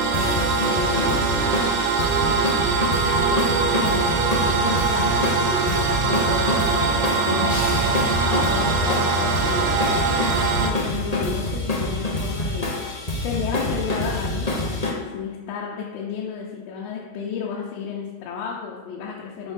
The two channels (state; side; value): late; right; 1.8 ms